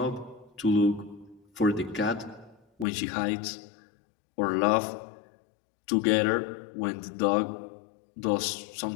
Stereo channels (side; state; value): right; drops out; at 2.9 s